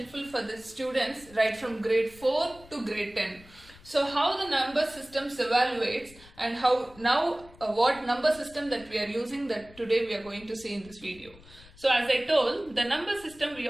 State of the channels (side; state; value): left; noise; rumble, 23 dB below the sound